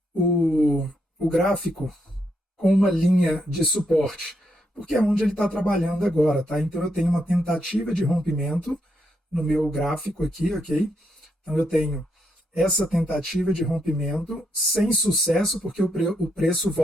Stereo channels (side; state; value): both; normal; correlation 0.79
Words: o gráfico com uma linha de suporte? Porque é onde ele está trabalhando agora, tá? Então eu tenho uma tentativa de rompimento no meu gráfico aqui, ok? Então eu tenho essa tentativa de rompimento sem sucesso, porque o preço